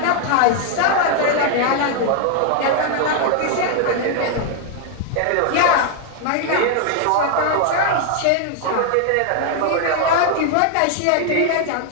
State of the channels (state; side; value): different; both; correlation 0.00